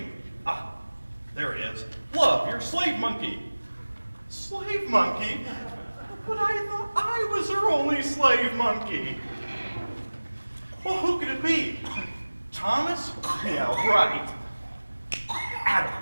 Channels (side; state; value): both; inverted; correlation -1.00